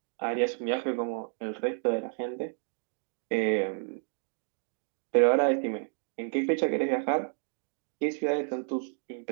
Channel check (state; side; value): silent; left; digital silence